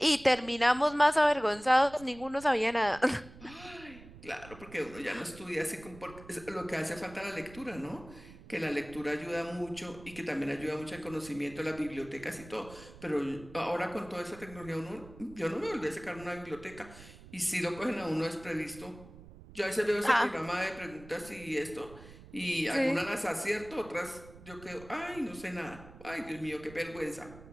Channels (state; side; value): noise; right; rumble, 18 dB below the sound